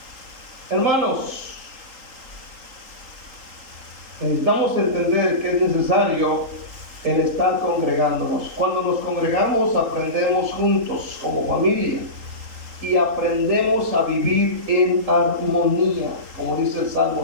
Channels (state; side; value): late; left; 3.8 ms